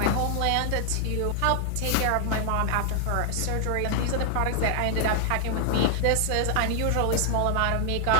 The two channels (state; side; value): different; both; correlation 0.00